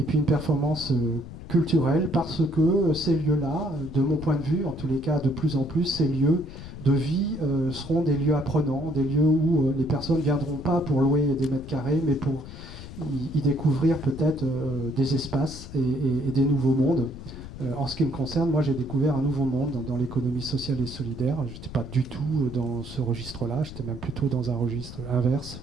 puis une performance culturelle, parce que ces lieux-là, de mon point de vue, en tous les cas de plus en plus, ces lieux de vie seront des lieux apprenants, des lieux où les personnes ne viendront pas pour louer des mètres carrés, mais pour y découvrir peut-être des espaces et des nouveaux mondes. En ce qui me concerne, moi j'ai découvert un nouveau monde dans l'économie sociale et solidaire. Je n'étais pas du tout dans ce registre-là, j'étais même plutôt dans un registre inverse,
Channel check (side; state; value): left; noise; rumble, 13 dB below the sound